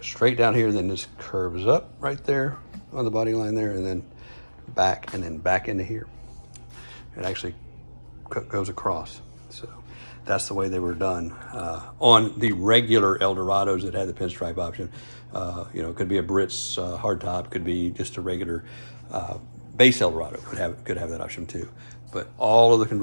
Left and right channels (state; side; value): inverted; both; correlation -1.00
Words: straight down here, then this curves up right there on the body line there, and then back into here. It actually goes across. So that's the way they were done. On the regular Eldorados that had the pinstripe option, it could be a Biarritz hardtop, could be just a regular base Eldorado, could have that option too. But all of the